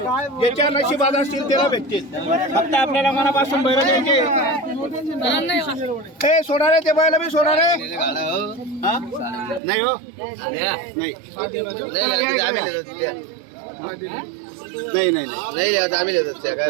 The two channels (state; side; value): drops out; left; at 9.6 s